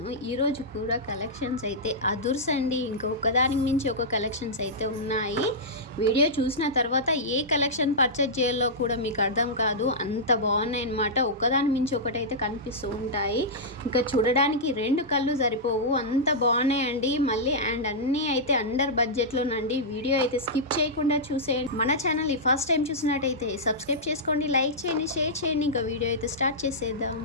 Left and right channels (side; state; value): both; normal; correlation -0.12